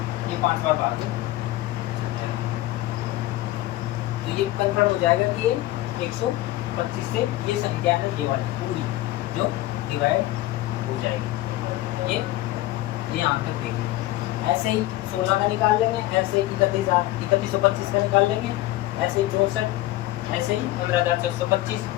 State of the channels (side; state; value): right; quieter; 16.6 dB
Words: ये 5 बार भाग चल जाएगा, तो ये कंफर्म हो जाएगा कि ये 125 से ये संख्या है ये वाली पूरी जो डिवाइड हो जाएगी। ये यहाँ तक देखें। ऐसे ही 16 का निकाल लेंगे, ऐसे ही 3125 का निकाल लेंगे, ऐसे ही 64, ऐसे ही 15625